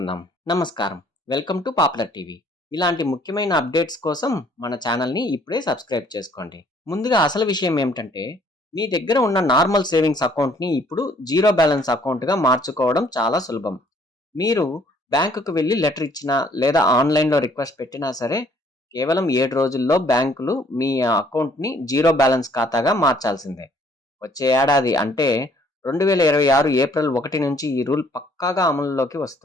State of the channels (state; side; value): normal; both; correlation 0.62